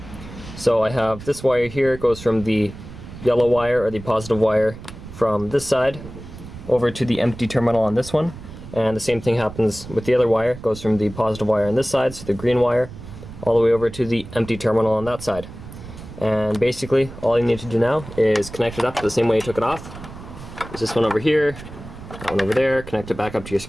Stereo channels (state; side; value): noise; right; rumble, 14 dB below the sound